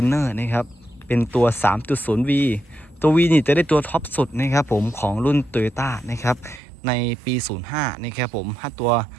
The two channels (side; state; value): left; drops out; at 6.6 s